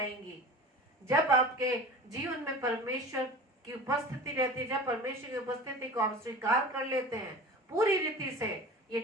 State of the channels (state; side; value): normal; both; correlation 0.37